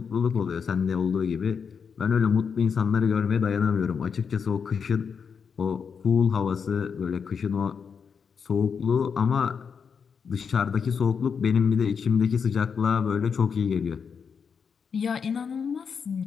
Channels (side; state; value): right; quieter; 6.3 dB